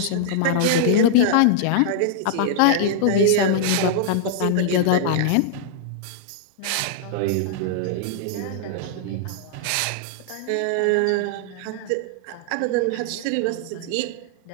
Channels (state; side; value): different; both; correlation -0.01